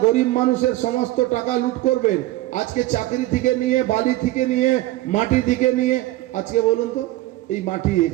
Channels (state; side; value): quieter; left; 16.8 dB